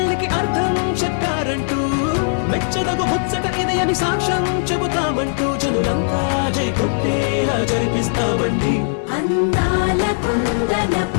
అర్థం చెప్పారంటూ, మెచ్చదగు ముచ్చట ఇది అని సాక్ష్యం చెబుతామంటూ, జనులంతా జై కొట్టేలా జరిపిస్తామండి. అందాల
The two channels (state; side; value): silent; right; digital silence